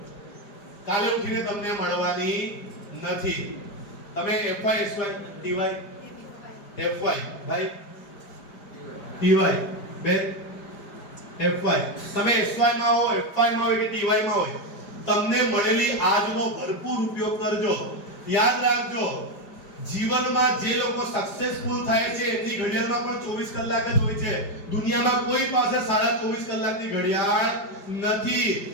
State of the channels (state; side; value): late; right; 4.9 ms